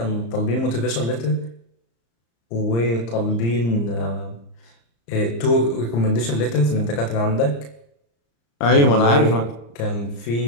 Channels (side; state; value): right; late; 35 ms